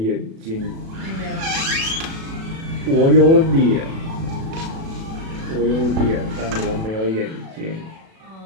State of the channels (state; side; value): late; left; 37 ms